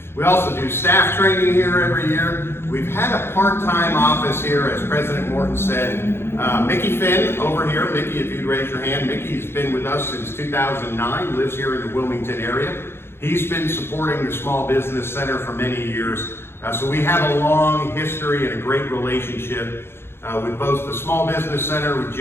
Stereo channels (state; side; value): late; right; 0.11 ms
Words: We also do staff training here every year. We've had a part-time office here, as President Morton said. Mickey Finn over here. Mickey, if you'd raise your hand. Mickey's been with us since 2009, lives here in the Wilmington area. He's been supporting the Small Business Center for many years. So we have a long history and a great relationship with both the Small Business Center, with